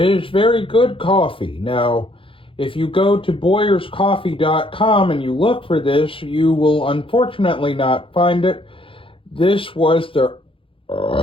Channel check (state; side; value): late; right; 0.26 ms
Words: very good coffee. Now, if you go to BoyersCoffee.com and you look for this, you will unfortunately not find it. This was the...